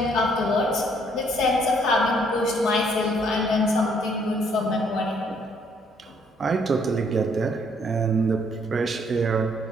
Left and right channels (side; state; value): both; normal; correlation 0.66